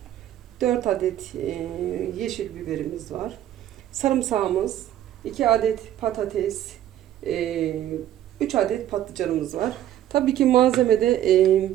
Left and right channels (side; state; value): left; quieter; 12.1 dB